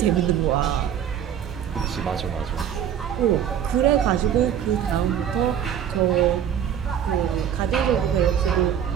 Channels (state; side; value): quieter; left; 9.3 dB